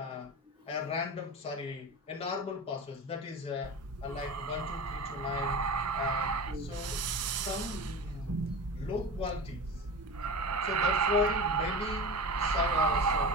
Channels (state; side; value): normal; both; correlation 0.29